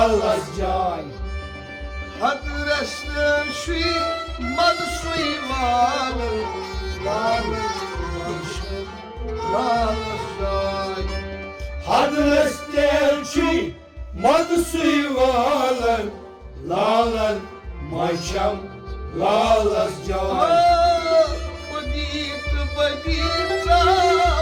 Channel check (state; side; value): identical; both; correlation 1.00